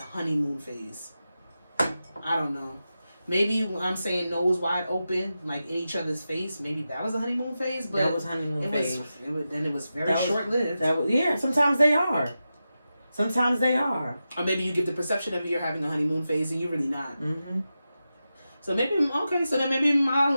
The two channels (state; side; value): inverted; both; correlation -0.91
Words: phase. I don't know. Maybe when I'm saying nose wide open, like in each other's face, maybe that was a honeymoon phase. But that was honeymoon phase. It was very short-lived. Sometimes they are. Or maybe you get the perception of you're having a honeymoon phase and you're really not. So maybe, maybe my